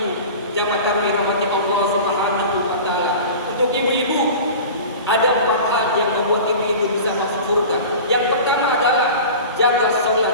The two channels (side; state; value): both; inverted; correlation -0.36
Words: jamaah tarawih rahmati Allah Subhanahu wa taala. Untuk ibu-ibu, ada 4 hal yang membuat ibu-ibu bisa masuk surga. Yang pertama adalah jaga